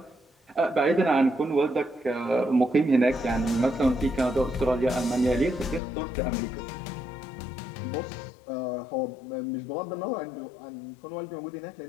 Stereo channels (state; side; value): drops out; right; at 5.8 s